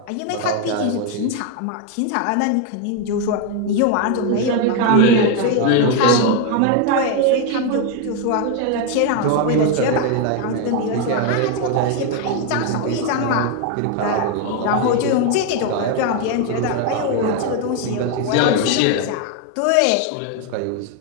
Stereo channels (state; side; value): different; both; correlation 0.01